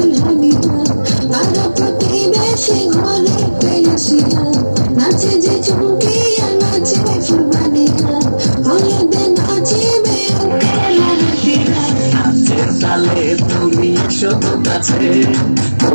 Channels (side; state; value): both; inverted; correlation -1.00